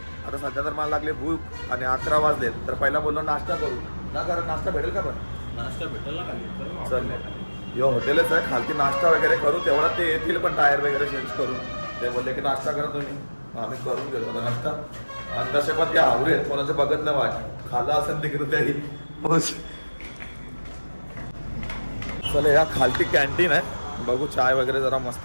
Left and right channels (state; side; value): inverted; both; correlation -1.00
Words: आता सध्या तर मला लागले भूक आणि 11 वाजलेत. तर पहिला बोललो नाश्ता करू ना. कारण नाश्ता भेटेल का? पण नाश्ता भेटेल ना. चल यो हॉटेलच आहे खालती. नाश्ता वगैरे करू तेवढा ते येतील पण टायर वगैरे चेंज करून. ते बोलले की नाश्ता करा तुम्ही. आम्ही करून घेतो आता नाश्ता. आणि तसे पण ते आवरे आहेत कोणाचं बघत नाही वाट. खाल्ला असेल तिकडे त्याही. चल या खालती कॅन्टीन आहे. बघू चाय वगैरे जरा मस्त